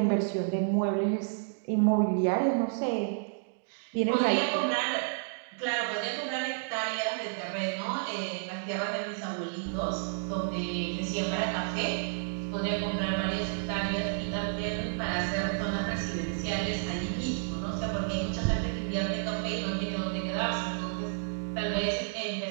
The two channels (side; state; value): left; silent; digital silence